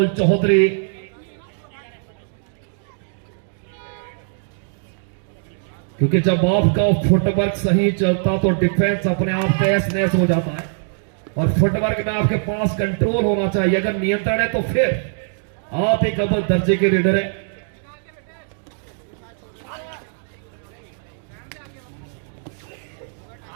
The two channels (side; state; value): left; silent; digital silence